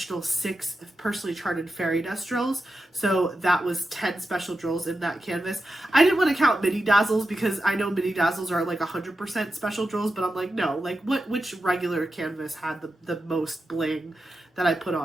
6 personally charted fairy dust drills. So that was 10 special drills in that canvas. I didn't want to count mini dazzles because I know mini dazzles are like 100% special drills, but I'm like, no, like which regular canvas had the most bling that I put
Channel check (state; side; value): normal; both; correlation 0.90